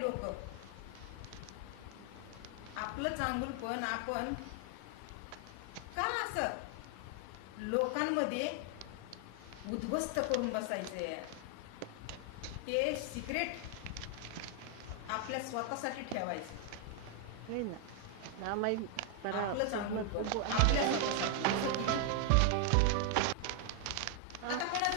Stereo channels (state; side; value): different; both; correlation 0.00